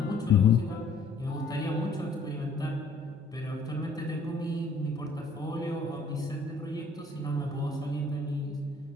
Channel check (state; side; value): quieter; right; 3.4 dB